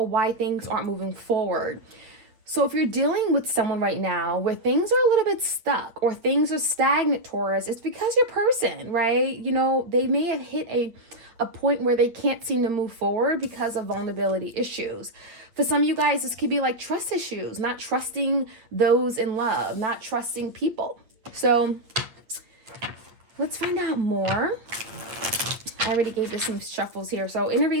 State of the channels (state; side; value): late; left; 8.4 ms